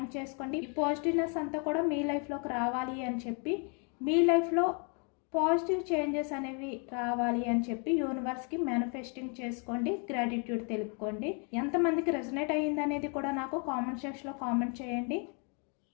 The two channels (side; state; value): right; quieter; 37.1 dB